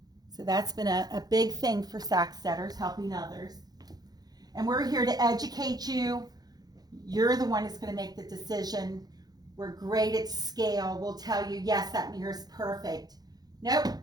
So that's been a big thing for Sacksteders, helping others. And we're here to educate you. You're the one that's going to make the decision. We're great at scale. We'll tell you, yes, that mirror's perfect. Nope,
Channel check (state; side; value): late; left; 0.19 ms